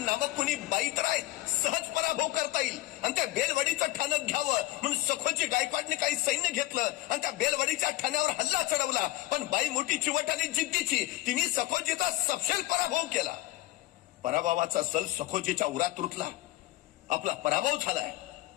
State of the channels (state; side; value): quieter; right; 17.5 dB